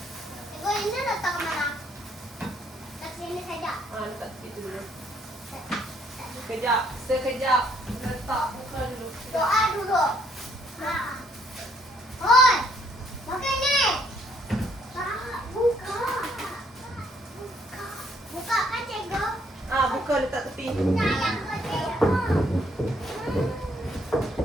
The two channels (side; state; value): both; normal; correlation 0.68